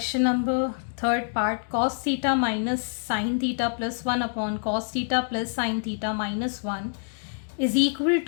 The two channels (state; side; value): silent; right; digital silence